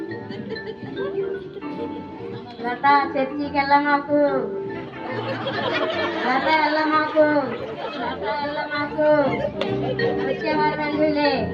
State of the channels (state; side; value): identical; both; correlation 1.00